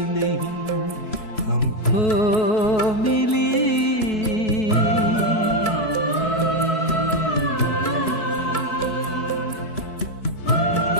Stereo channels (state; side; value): late; right; 4.6 ms